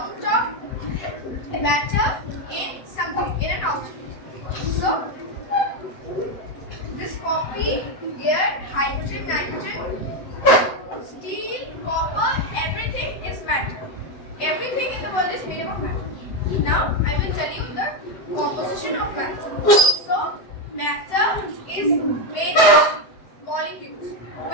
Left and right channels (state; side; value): late; right; 7.9 ms